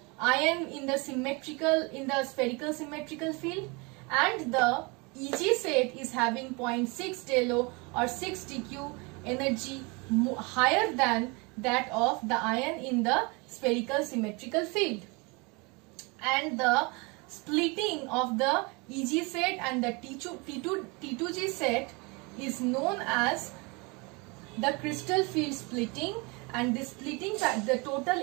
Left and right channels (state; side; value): quieter; left; 28.6 dB